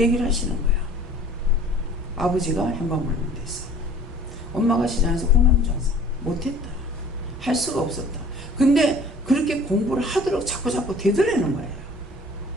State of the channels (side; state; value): both; normal; correlation 0.49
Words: 하시는 거야. 아버지가 현방물면 됐어. 엄마가 시장에서 콩나물 장사 못했다. 할 수가 없었다. 근데 그렇게 공부를 하도록 자꾸 되돌리는 거예요.